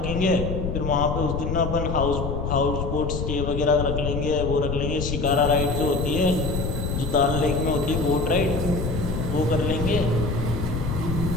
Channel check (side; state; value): left; noise; rumble, 3 dB below the sound